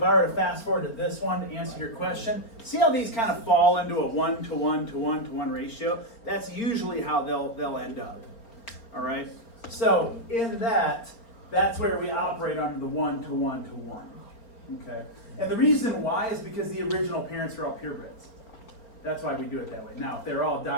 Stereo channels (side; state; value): right; late; 4.3 ms